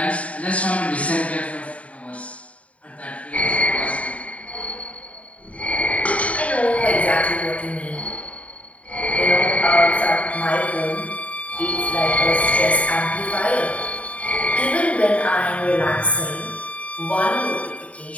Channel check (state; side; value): late; right; 0.066 ms